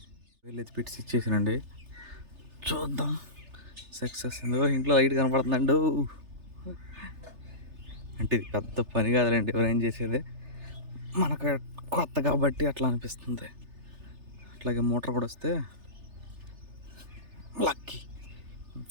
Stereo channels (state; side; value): late; left; 3.3 ms